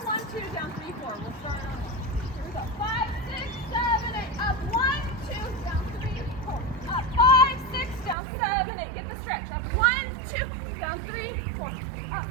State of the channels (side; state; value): left; drops out; at 8.2 s